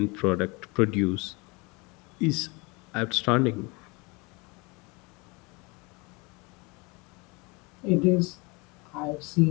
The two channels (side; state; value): right; quieter; 27.3 dB